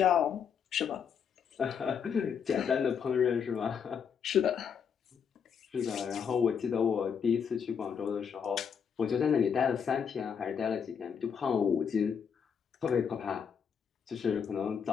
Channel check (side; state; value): right; quieter; 7.1 dB